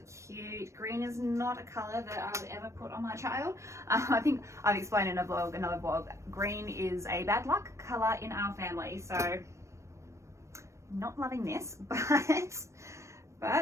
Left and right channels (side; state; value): left; late; 0.14 ms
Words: cute. Green is not a color that I would ever put on my child. I think I've explained in another vlog, green is a bad luck color in our family, so not loving this, but